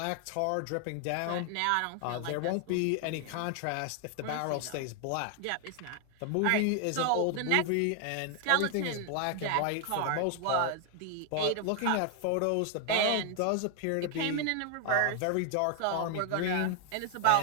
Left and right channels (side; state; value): both; different; correlation 0.00